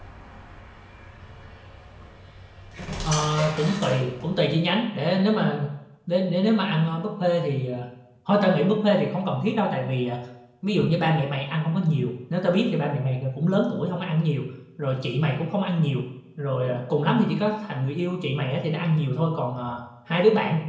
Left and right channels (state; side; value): identical; both; correlation 1.00